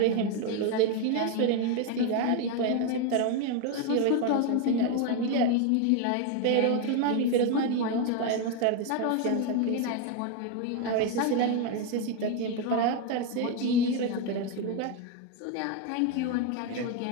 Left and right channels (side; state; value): both; different; correlation 0.02